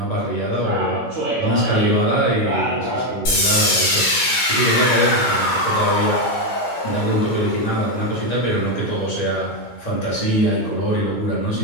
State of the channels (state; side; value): normal; both; correlation 0.07